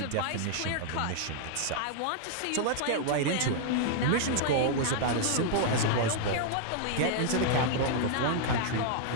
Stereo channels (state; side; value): different; both; correlation -0.01